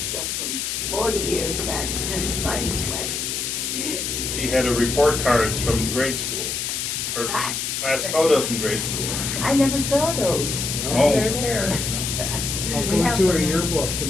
from 40 years back and mine 20. She had a report cards from grade school, or class photos from grade school. I never saw those. Oh. They're there. I was going through her yearbooks in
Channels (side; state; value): left; noise; hiss, 2 dB below the sound